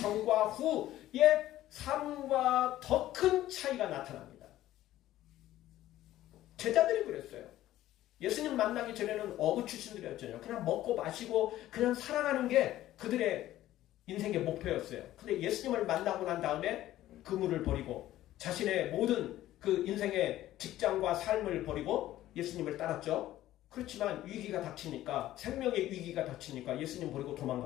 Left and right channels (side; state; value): right; quieter; 14.2 dB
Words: 후의 삶과 더 큰 차이가 나타납니다. 제자들이 그랬어요. 예수님 만나기 전에는 어부 출신들이었잖아요. 그냥 먹고 마시고 그냥 살아가는 게 그들의 인생의 목표였어요. 근데 예수님을 만나고 난 다음에 그물을 버리고 자신의 모든 그 인생의 직장과 삶을 버리고 예수님을 따랐죠. 그렇지만 위기가 닥치니까, 생명의 위기가 닥치니까 예수님 버리고